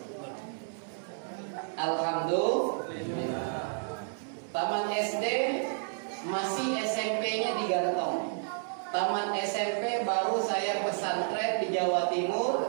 Alhamdulillah. Taman SD masih SMP-nya di Gantong. Taman SMP baru saya pesantren di Jawa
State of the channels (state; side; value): silent; left; digital silence